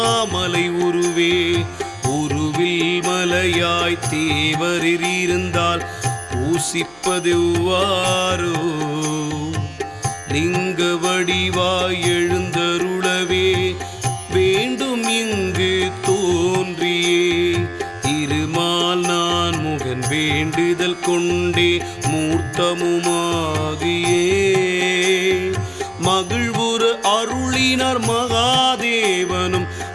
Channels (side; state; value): right; noise; hum, 29 dB below the sound